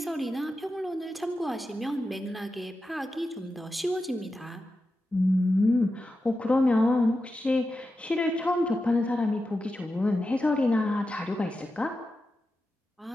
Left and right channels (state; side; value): normal; both; correlation 0.91